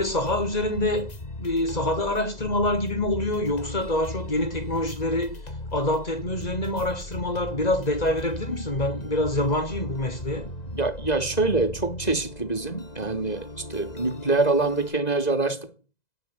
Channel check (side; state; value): right; late; 2.0 ms